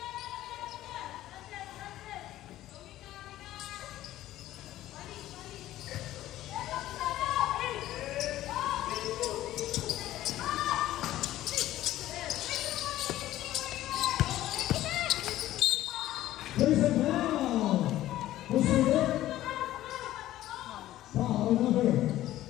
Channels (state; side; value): quieter; right; 14.4 dB